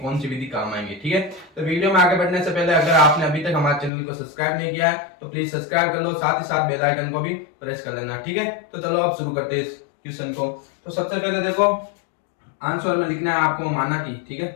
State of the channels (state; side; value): drops out; right; at 3.9 s